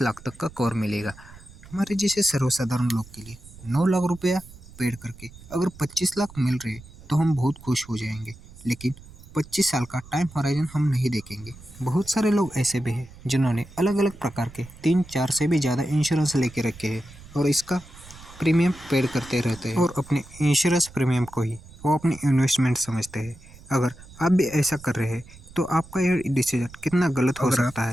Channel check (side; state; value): right; noise; rumble, 19 dB below the sound